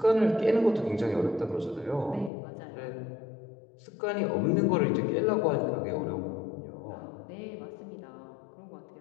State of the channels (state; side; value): drops out; right; at 2.3 s